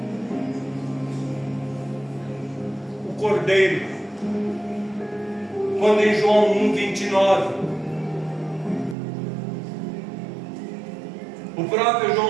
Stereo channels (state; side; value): drops out; left; at 9.0 s